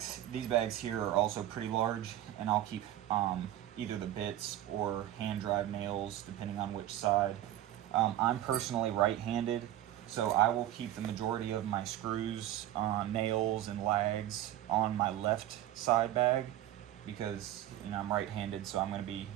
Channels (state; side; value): quieter; left; 13.0 dB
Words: here are also pretty large, and I'll keep either the bits or hand drive nails depending on which side. I'm personally right-handed, so I will keep the majority of my screws, nails, and lags on my left side bag because, you know, I'm right-handed, so I'm going to be